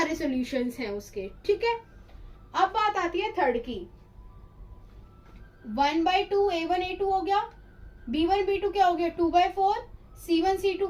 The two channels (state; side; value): identical; both; correlation 1.00